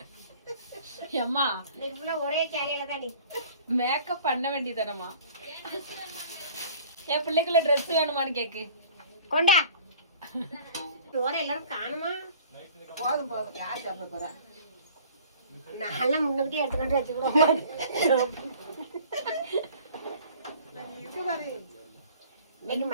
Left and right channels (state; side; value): inverted; both; correlation -0.49